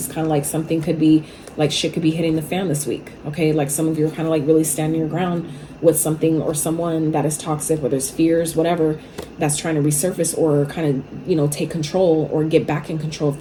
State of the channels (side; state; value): both; identical; correlation 1.00